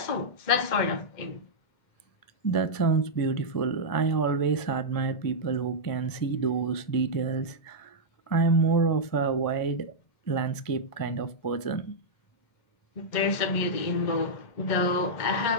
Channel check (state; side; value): late; right; 1.7 ms